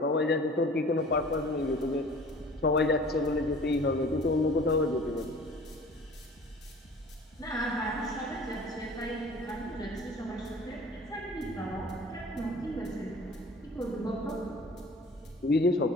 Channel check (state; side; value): normal; both; correlation 0.46